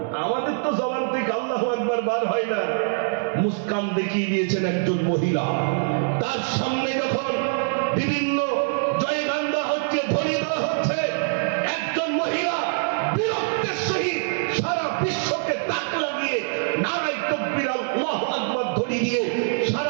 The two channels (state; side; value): silent; left; 63 dB below the other